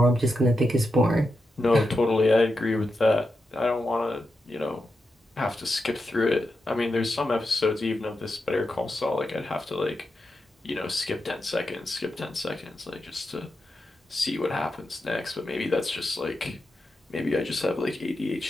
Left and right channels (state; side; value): normal; both; correlation 0.88